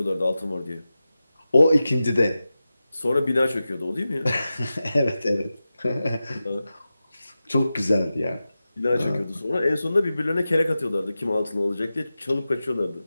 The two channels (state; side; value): inverted; both; correlation -0.94